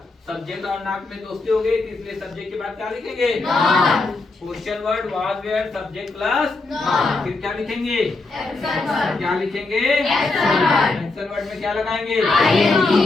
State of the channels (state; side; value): quieter; right; 3.4 dB